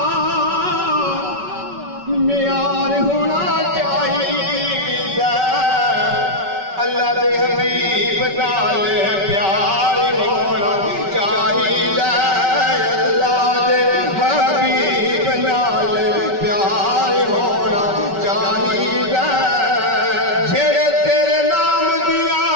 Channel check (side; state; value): left; late; 5.2 ms